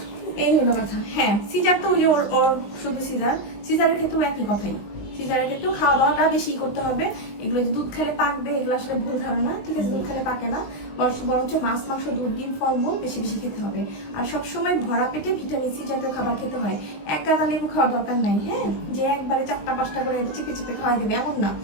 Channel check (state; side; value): late; right; 20 ms